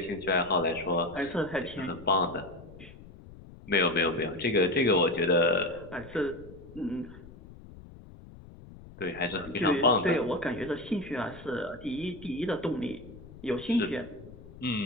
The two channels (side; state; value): left; noise; rumble, 18 dB below the sound